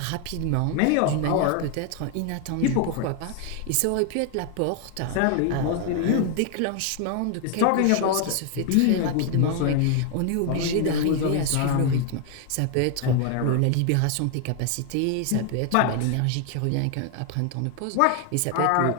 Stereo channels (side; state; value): both; different; correlation 0.00